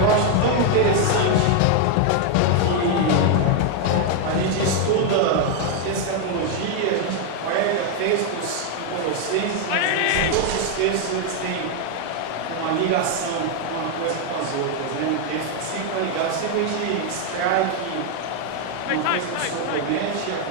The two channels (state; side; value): different; both; correlation 0.01